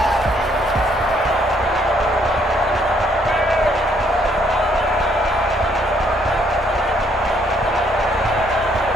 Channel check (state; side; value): normal; both; correlation 0.68